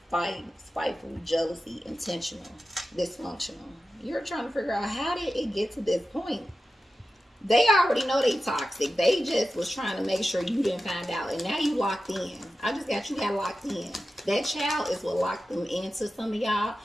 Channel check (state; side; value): normal; both; correlation 0.92